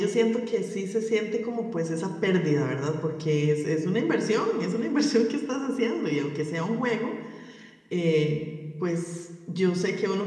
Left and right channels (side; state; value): both; identical; correlation 1.00